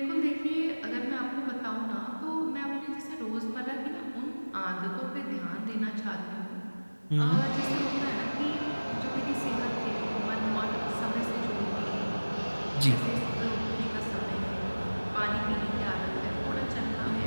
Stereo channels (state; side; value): inverted; both; correlation -1.00